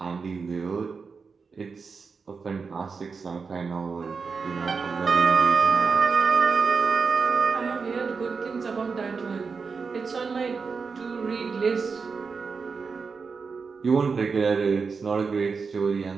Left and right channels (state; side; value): quieter; left; 5.1 dB